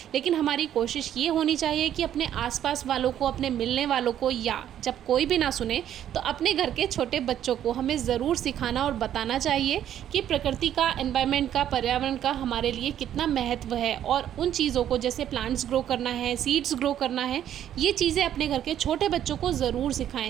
लेकिन हमारी कोशिश ये होनी चाहिए कि अपने आसपास वालों को, अपने मिलने वालों को, या जब कोई भी ना सुने तो अपने घर के छोटे बच्चों को हमें ज़रूर सिखाना और बताना चाहिए कि प्रकृति का, एनवायरनमेंट का, पर्यावरण का हमारे लिए कितना महत्व है। और उन चीज़ों को, जैसे प्लांट्स ग्रो करना है, सीड्स ग्रो करना है, ये चीज़ें अपने घर के छोटे बच्चों को ज़रूर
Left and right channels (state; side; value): quieter; left; 10.7 dB